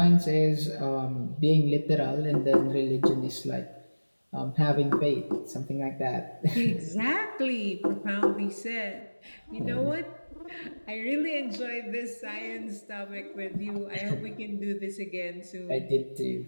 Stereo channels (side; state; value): both; inverted; correlation -1.00